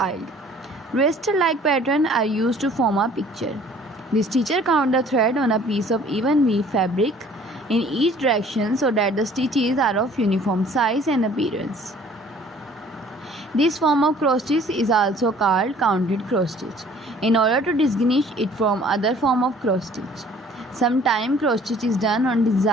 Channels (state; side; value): normal; both; correlation 0.54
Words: raster-like pattern are used to form a picture. The stitcher count the thread on a piece of even weave fabric in each direction so that the stitches are of uniform size and appearance. This form of cross stitch is also called counted cross stitch in order to distinguish it from other form of cross stitch. Sometimes cross stitch is done on